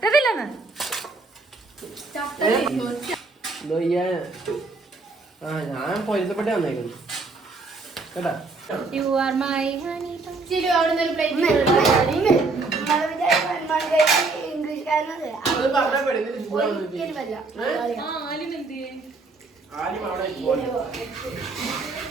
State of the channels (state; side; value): quieter; left; 3.7 dB